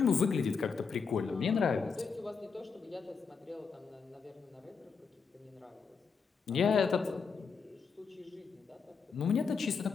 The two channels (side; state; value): right; quieter; 5.5 dB